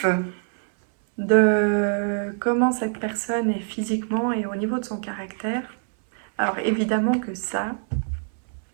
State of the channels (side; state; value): left; silent; 62 dB below the other